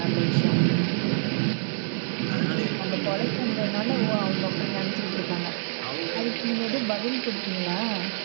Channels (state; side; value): silent; left; digital silence